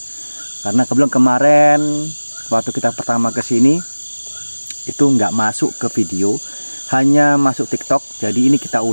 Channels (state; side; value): inverted; both; correlation -1.00